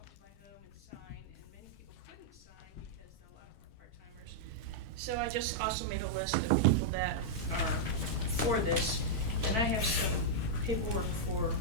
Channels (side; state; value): both; normal; correlation -0.05